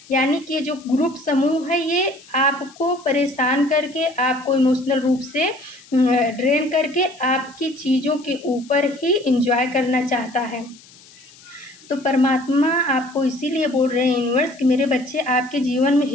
यानी कि जो ग्रुप समूह है, ये आपको परेशान करके, आपको इमोशनल रूप से ड्रेन करके आपकी चीज़ों के ऊपर ही एंजॉय करना चाहता है। तो परमात्मा आपको इसीलिए बोल रहे हैं यूनिवर्स कि मेरे बच्चे, आपके जीवन में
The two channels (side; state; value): left; noise; hiss, 24 dB below the sound